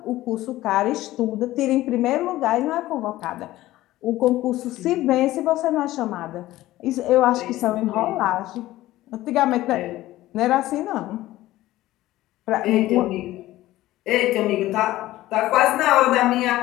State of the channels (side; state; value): right; quieter; 16.1 dB